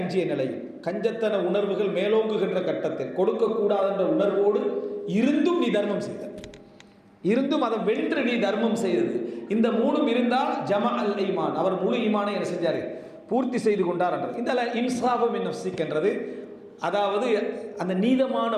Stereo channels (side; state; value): both; identical; correlation 1.00